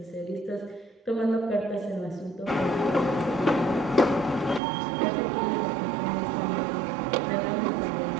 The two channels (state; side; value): drops out; left; at 4.6 s